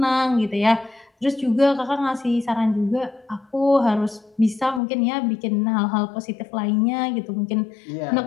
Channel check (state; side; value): drops out; right; at 4.8 s